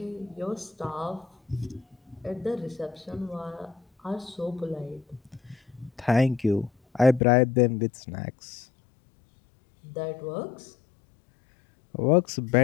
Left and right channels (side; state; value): right; drops out; at 7.2 s